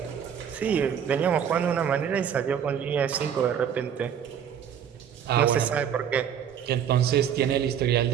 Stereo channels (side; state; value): left; quieter; 8.5 dB